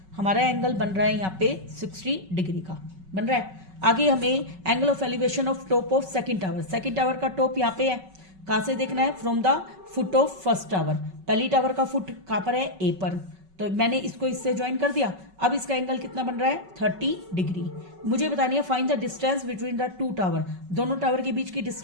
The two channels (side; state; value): left; late; 5.3 ms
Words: हमारा एंगल बन रहा है यहाँ पे 60 डिग्री का बन रहा है। आगे हमें angle of elevation of top of second tower, second tower का टॉप यहाँ पे है, कहाँ से देखना है, from the foot of first tower, पहली टावर का फुट कहाँ पर है, ए पर, तो मैंने इसको इससे ज्वाइन कर दिया। अब इसका एंगल कितना बन रहा है, 30 डिग्री। मुझे बतानी है find the distance between the two tower, दोनों टावर के बीच की